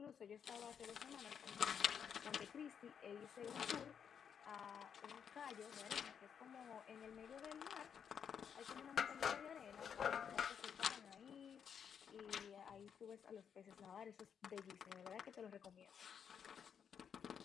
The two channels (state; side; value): quieter; right; 7.6 dB